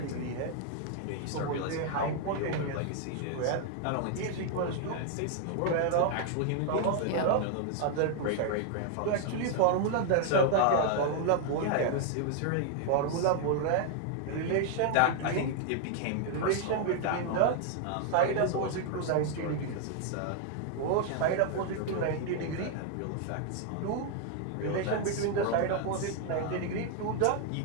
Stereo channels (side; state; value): both; different; correlation 0.00